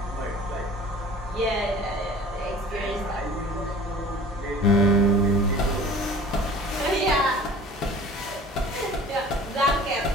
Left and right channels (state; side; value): normal; both; correlation 0.44